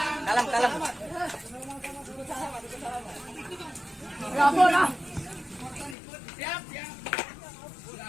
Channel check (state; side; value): drops out; right; at 6.0 s